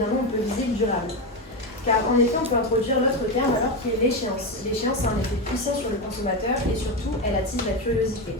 non, on peut viser le durable. Car en effet, on peut introduire l'autre terme alors qui est l'échéance. L'échéance a un effet puissant sur le consommateur et surtout, elle attise la curiosité.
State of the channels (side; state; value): both; normal; correlation 0.13